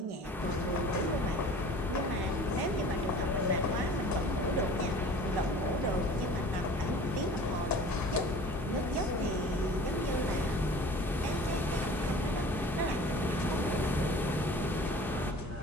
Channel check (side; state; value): both; normal; correlation 0.44